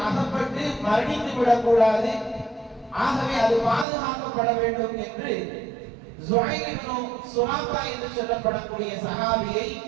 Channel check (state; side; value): drops out; left; at 3.9 s